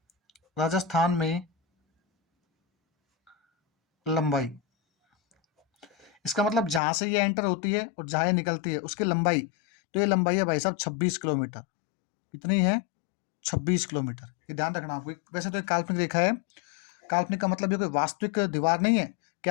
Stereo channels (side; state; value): right; drops out; at 6.8 s